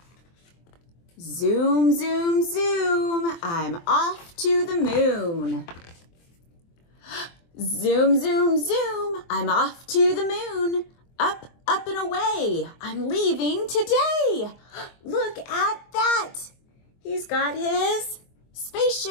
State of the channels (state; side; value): late; right; 24 ms